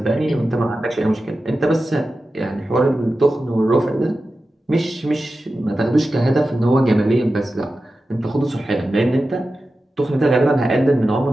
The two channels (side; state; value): both; normal; correlation 0.93